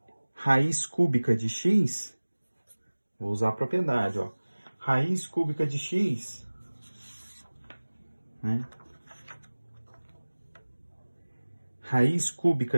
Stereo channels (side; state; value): both; inverted; correlation -1.00